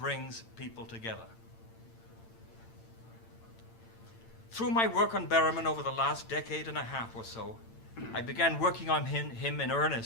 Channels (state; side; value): late; right; 8.9 ms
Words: people together. Through my work on Berryman over the last decade and a half or so, I began working on him in